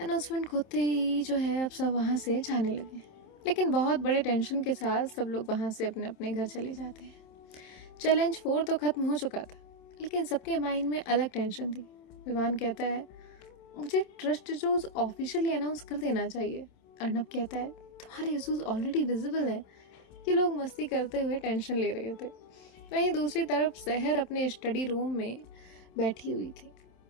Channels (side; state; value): right; late; 27 ms